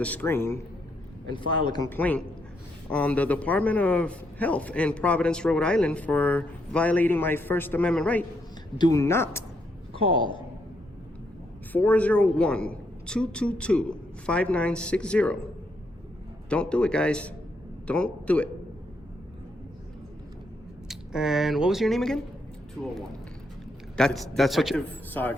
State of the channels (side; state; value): both; normal; correlation 0.76